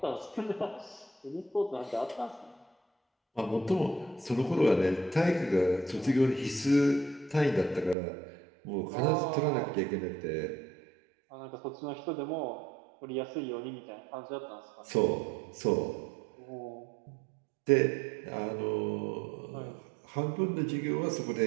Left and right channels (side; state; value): left; drops out; at 8.0 s